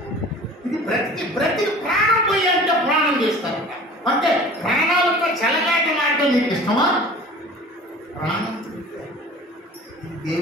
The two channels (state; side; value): normal; both; correlation 0.43